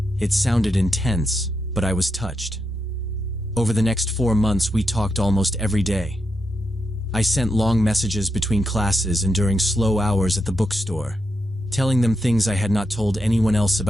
It sounded intense, but I was touched. Over the next 4 months, we talked almost every day. I sent long messages between classes and during slow hours at the bookstore, telling them things I had not told anyone else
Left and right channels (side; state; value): both; normal; correlation 0.84